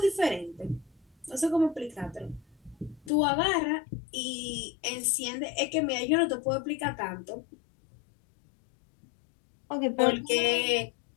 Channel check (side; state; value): right; drops out; at 3.1 s